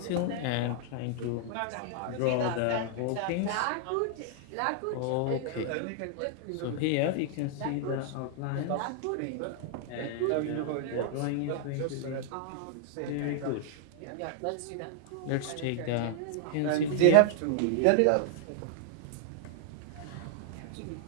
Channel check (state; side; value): different; both; correlation 0.00